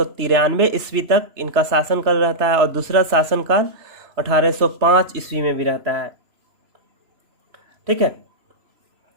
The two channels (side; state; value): left; late; 3.0 ms